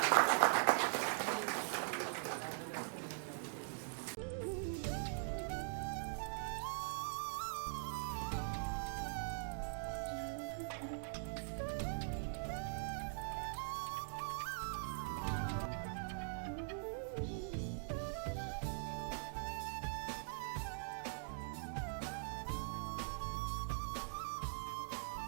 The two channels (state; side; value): silent; left; digital silence